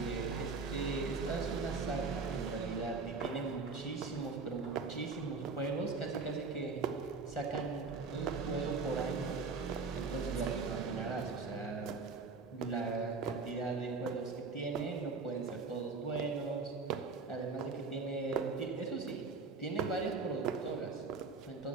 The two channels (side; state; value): left; quieter; 4.4 dB